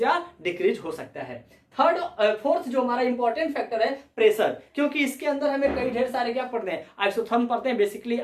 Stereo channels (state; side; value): identical; both; correlation 1.00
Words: या डिक्रीज हो सकता है। फोर्थ जो हमारा इंपॉर्टेंट फैक्टर है प्रेशर, क्योंकि इसके अंदर हमें कई ढेर सारे क्या पढ़ते हैं, आइसोथर्म पढ़ते हैं। बेसिकली